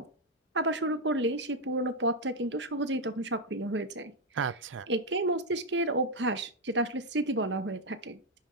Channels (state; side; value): normal; both; correlation 0.02